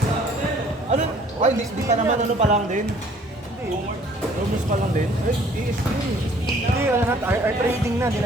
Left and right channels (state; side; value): normal; both; correlation 0.57